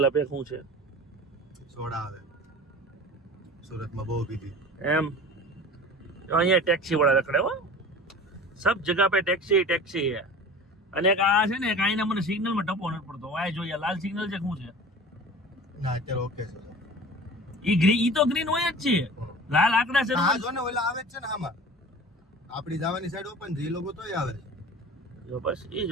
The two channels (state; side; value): normal; both; correlation 0.39